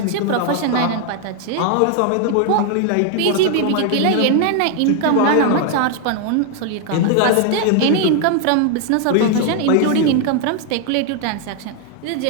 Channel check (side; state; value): both; different; correlation 0.00